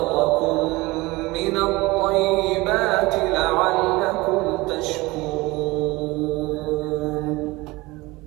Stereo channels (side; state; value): left; quieter; 21.6 dB